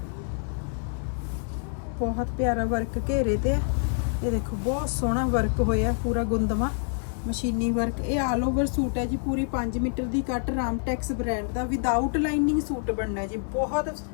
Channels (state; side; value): silent; right; 60 dB below the other